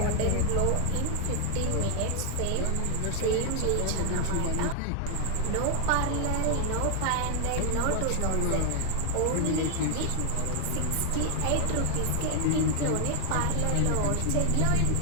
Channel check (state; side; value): different; both; correlation 0.00